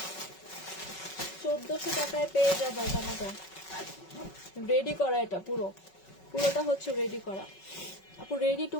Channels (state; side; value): late; right; 5.3 ms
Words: 1400 টাকায় পেয়ে যাবে জামাটা। রেডি করা, এটা পুরোটা হচ্ছে রেডি করা। আপু রেডি টু